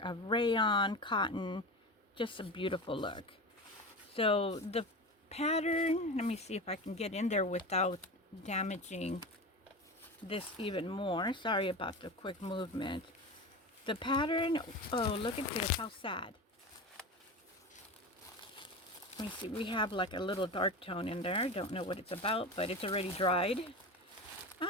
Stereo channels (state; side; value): normal; both; correlation 0.27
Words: rayon, cotton. Just a beautiful look. So the pattern, let me see if I can get in there without damaging this even more. Sorry about the quick movement. The pattern, oh, look at this, how sad. Let me see, we have like a little dark tone in there. Don't know what it's about, but it's already dried.